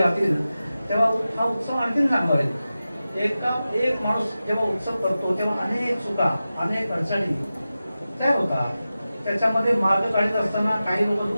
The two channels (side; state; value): both; inverted; correlation -0.94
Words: तेव्हा हा उत्सव आणखीन चांगला होईल. एक माणूस जेव्हा उत्सव करतो तेव्हा अनेक चुका, अनेक अडचणी तयार होतात, त्याच्यामध्ये मार्ग काढत असताना काही लोक